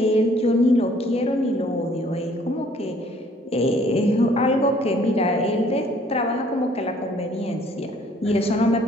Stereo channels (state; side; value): normal; both; correlation 0.59